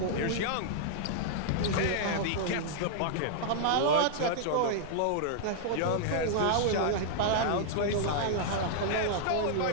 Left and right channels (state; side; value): different; both; correlation -0.01